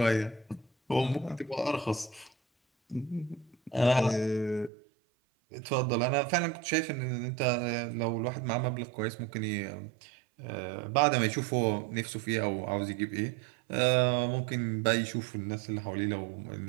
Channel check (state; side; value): drops out; left; at 4.7 s